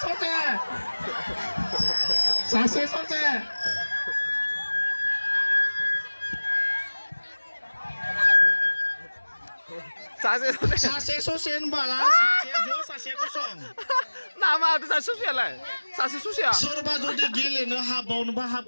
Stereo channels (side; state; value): both; inverted; correlation -1.00